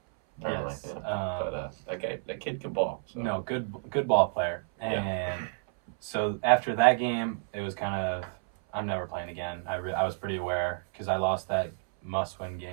Apparently, Yes. yeah. But that kid could ball. So. No, good ball player. And so after that game, it was kind of, I'm never playing again. I was pretty aware because I lost that must-win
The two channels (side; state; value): left; silent; 58 dB below the other